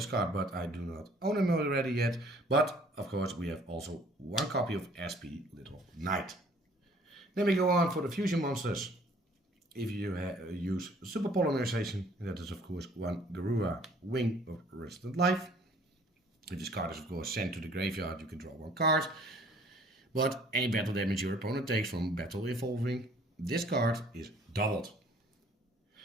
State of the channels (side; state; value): both; normal; correlation 0.57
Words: card, but I do not own him already yet. But, of course, we have also one copy of SP Little Knight. Then we go on for the fusion monsters. If you use Super Polymerization, that is, of course, one Garura Wing of Resident Life. If this card is, of course, sent to the graveyard, you can draw one card. But any battle damage your opponent takes from battle involving this card is doubled.